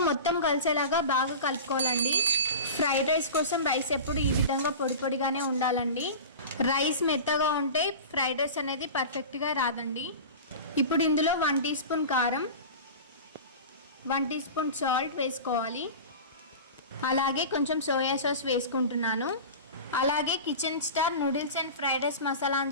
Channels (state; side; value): inverted; both; correlation -0.32